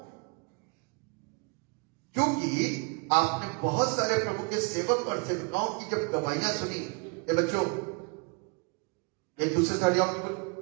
क्योंकि आपने बहुत सारे प्रभु के सेवक और सेविकाओं की जब गवाहियां सुनी। ये बच्चों, एक दूसरे से हट जाओ, बिल्कुल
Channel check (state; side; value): quieter; left; 32.7 dB